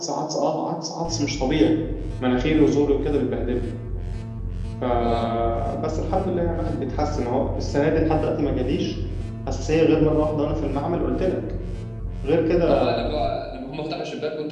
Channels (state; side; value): identical; both; correlation 1.00